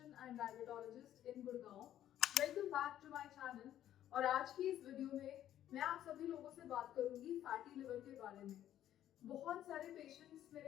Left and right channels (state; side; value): quieter; right; 11.8 dB